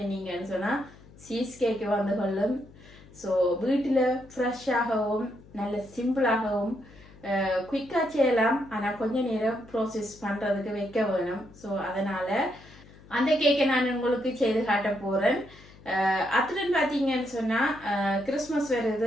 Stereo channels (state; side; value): noise; left; hum, 22 dB below the sound